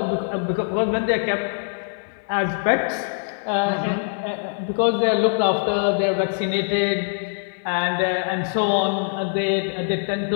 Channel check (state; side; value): silent; right; digital silence